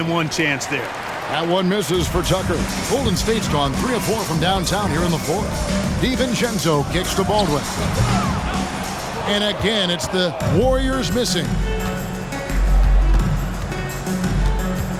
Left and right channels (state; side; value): identical; both; correlation 1.00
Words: one chance there. That one misses for Tucker. Golden State's gone 3 of 4 from downtown here in the fourth. DiVincenzo kicks to Baldwin. And again, it's the Warriors missing.